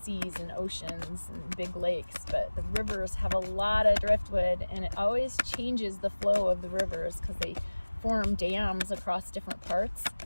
seas and oceans and big lakes, but the rivers have a lot of driftwood, and it always changes the flow of the rivers because they form dams across different parts,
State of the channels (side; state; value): both; inverted; correlation -1.00